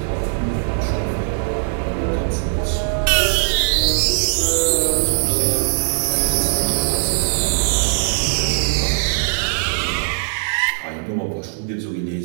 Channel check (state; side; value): silent; left; digital silence